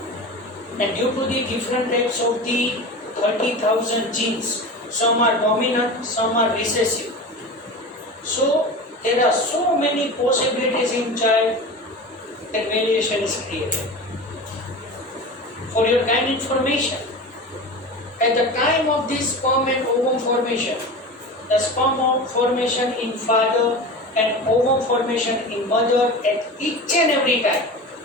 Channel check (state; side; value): normal; both; correlation 0.30